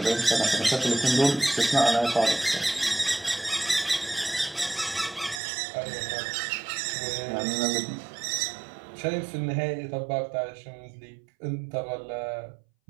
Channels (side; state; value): left; drops out; at 5.4 s